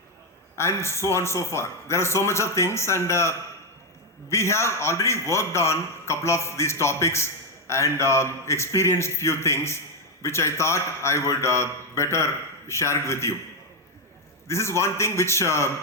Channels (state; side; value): normal; both; correlation 0.04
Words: and so on and so forth. There are so much of things, and we have already worked on a couple of these topics and experienced few things which I thought I would better share it with you. This is one thing which